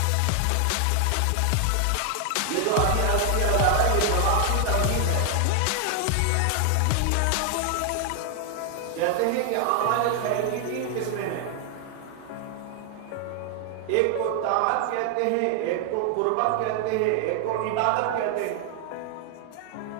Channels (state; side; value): different; both; correlation 0.00